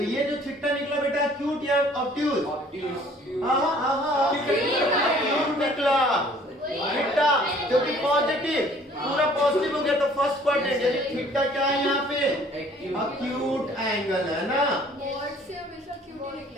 ये जो थीटा निकला बेटा एक्यूट या ऑब्ट्यूज? एक्यूट निकला थीटा, क्योंकि पॉजिटिव पूरा पॉजिटिव हो गया, तो फर्स्ट क्वाड्रेंट यानी थीटा क्या है यहाँ पे? एक्यूट एंगल है ना। मॉड से हमेशा क्यूट ही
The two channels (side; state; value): both; normal; correlation 0.55